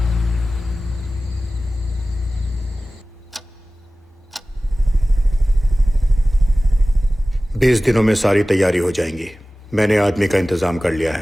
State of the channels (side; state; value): both; normal; correlation 0.97